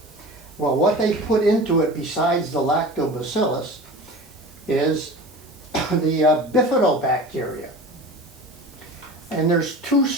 Well, what they put into it besides the lactobacillus is the bifidobacteria. And there's two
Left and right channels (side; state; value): right; noise; hiss, 25 dB below the sound